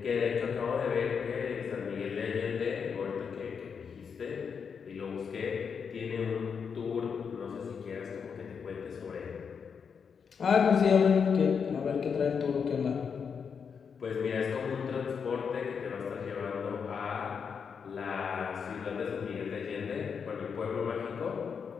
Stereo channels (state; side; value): quieter; right; 6.4 dB